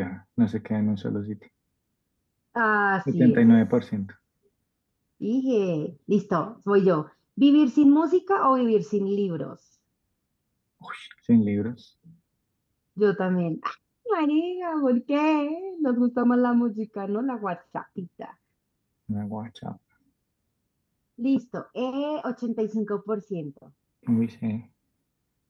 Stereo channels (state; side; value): identical; both; correlation 1.00